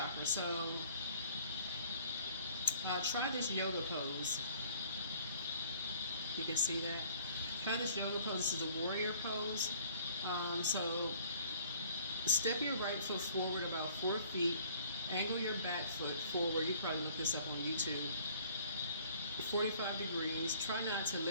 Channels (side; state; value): both; inverted; correlation -0.55